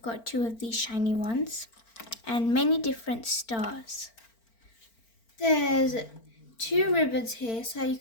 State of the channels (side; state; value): right; late; 4.4 ms